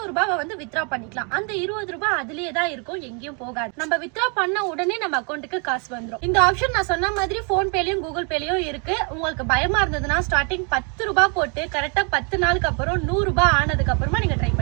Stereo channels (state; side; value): quieter; left; 36.1 dB